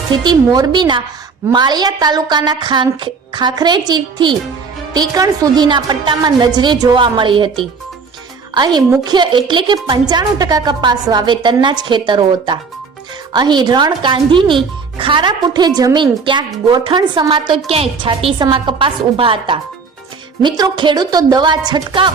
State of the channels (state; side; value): quieter; left; 5.0 dB